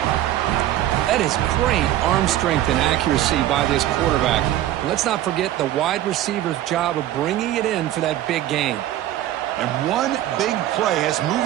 That is great arm strength and accuracy by this quarterback. And let's not forget the wide receiver's job of bringing it in for that big gain. And one big play has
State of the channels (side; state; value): left; quieter; 13.4 dB